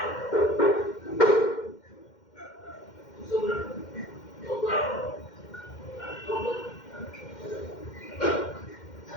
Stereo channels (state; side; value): late; right; 2.1 ms